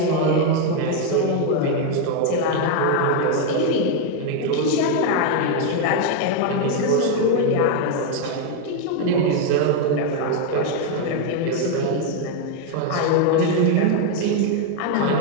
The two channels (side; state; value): both; different; correlation 0.01